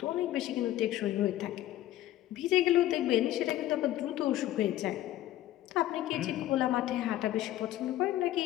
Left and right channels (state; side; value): quieter; right; 13.8 dB